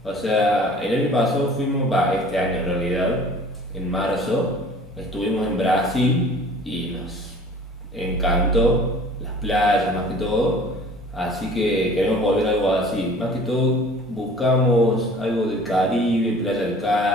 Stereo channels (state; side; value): normal; both; correlation 0.47